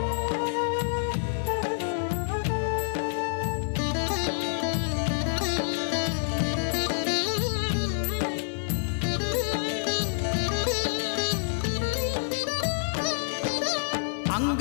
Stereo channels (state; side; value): silent; right; 60 dB below the other